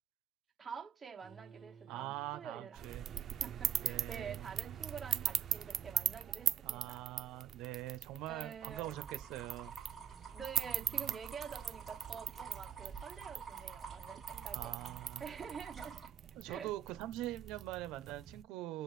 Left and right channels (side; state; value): left; quieter; 9.4 dB